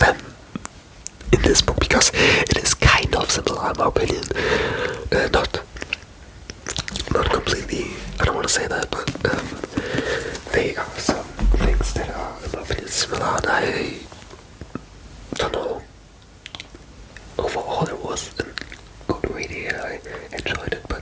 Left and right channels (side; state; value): both; identical; correlation 1.00